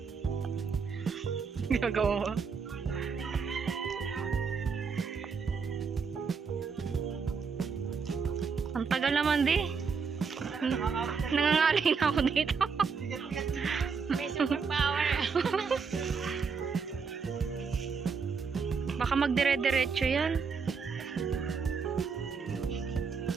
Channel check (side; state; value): left; quieter; 5.5 dB